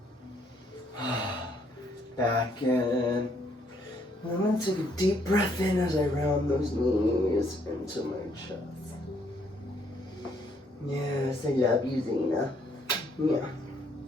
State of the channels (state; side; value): normal; both; correlation 0.69